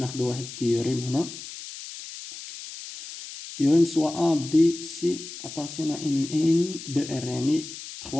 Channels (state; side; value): noise; left; hiss, 12 dB below the sound